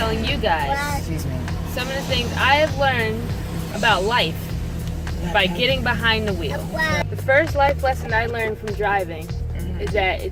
you guys some of the things I have learned about life by getting behind the wheel. The first life lesson I learned from driving is that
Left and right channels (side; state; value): both; identical; correlation 1.00